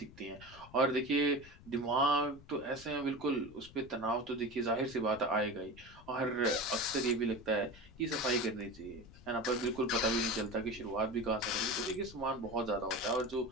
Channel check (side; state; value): left; noise; rumble, 20 dB below the sound